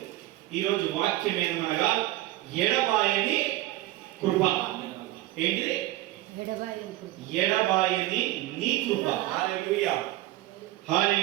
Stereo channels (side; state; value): left; quieter; 16.5 dB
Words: ఈ రోజు వాక్యం ఏమనగా ఎడబాయని కృప. ఏంటిది? ఎడబాయని నీ కృప. హల్లెలూయా